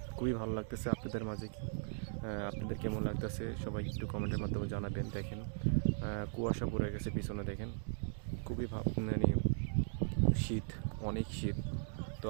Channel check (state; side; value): silent; left; digital silence